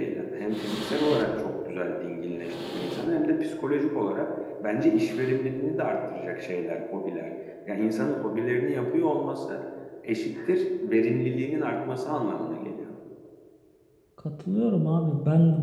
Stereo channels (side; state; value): both; identical; correlation 1.00